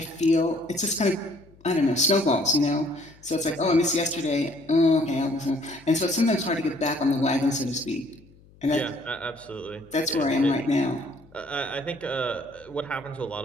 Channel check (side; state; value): left; noise; hum, 26 dB below the sound